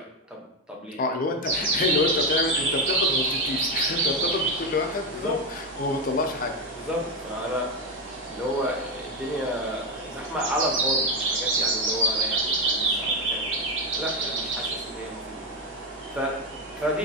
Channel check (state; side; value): normal; both; correlation 0.09